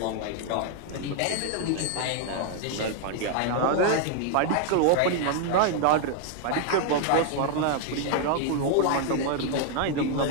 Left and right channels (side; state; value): both; different; correlation 0.00